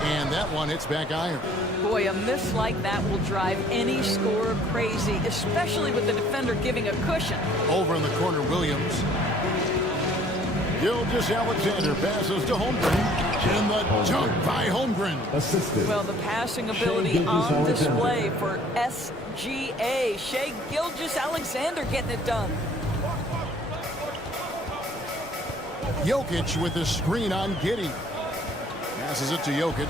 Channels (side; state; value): both; normal; correlation 0.56